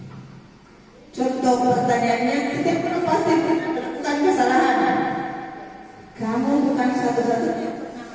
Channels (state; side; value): identical; both; correlation 1.00